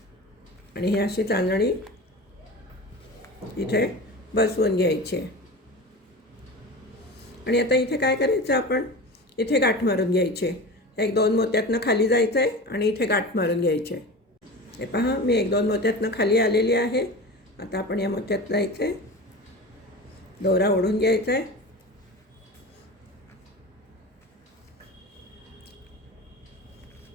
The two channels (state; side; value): normal; both; correlation 0.32